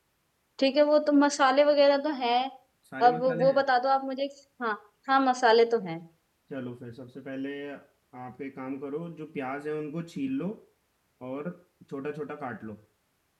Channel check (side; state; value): both; identical; correlation 1.00